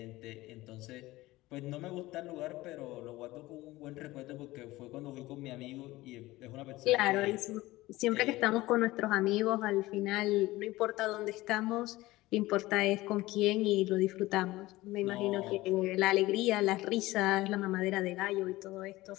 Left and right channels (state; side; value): quieter; right; 18.5 dB